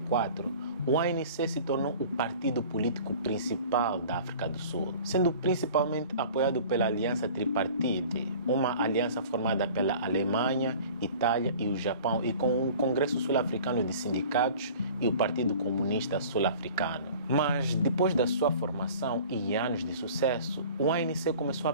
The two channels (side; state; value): both; inverted; correlation -0.44